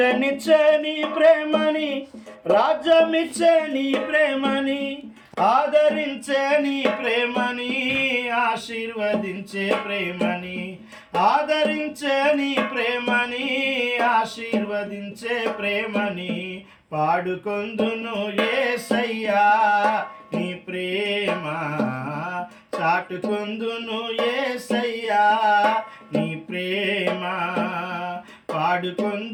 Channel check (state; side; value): identical; both; correlation 1.00